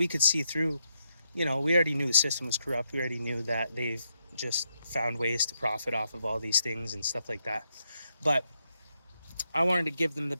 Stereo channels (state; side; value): inverted; both; correlation -0.81